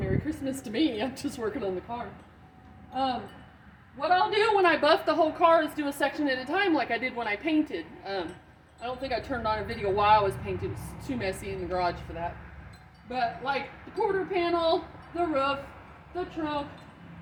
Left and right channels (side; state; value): both; identical; correlation 1.00